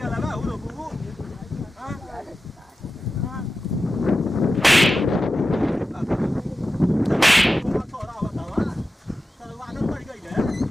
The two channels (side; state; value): both; normal; correlation 0.92